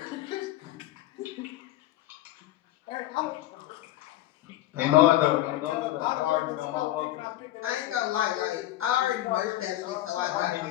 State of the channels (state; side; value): quieter; right; 14.8 dB